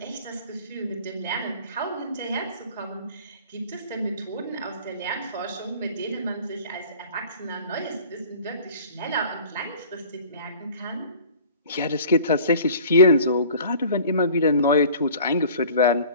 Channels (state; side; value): inverted; both; correlation -0.46